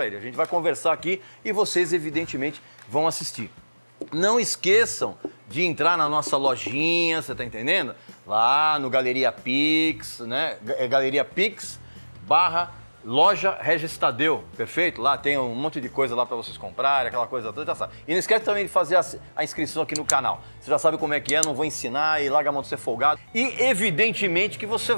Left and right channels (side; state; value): both; inverted; correlation -1.00